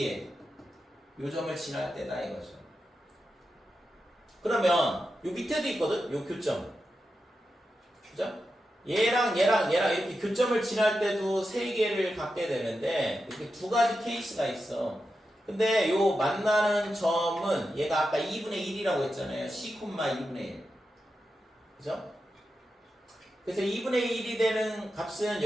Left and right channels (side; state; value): both; normal; correlation 0.89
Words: 요 점을 지날 때다 이거죠. 그러면 요 밑에도 있거든. 요 교점. 그죠? 얘랑 이렇게 교점을 지날 때도 세 개를 갖게 되는데, 이렇게 두 가지 케이스가 있어. 근데 요 만나는 점은 얘가 아까 2분의 1이라고 했잖아요. c, 2분의 1. 그죠? 그래서 2분의 1이 되는 값은